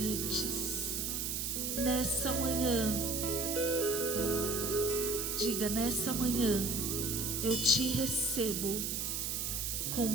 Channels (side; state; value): right; noise; hiss, 1 dB below the sound